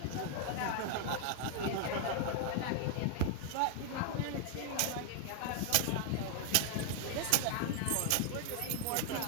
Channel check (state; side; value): different; both; correlation 0.00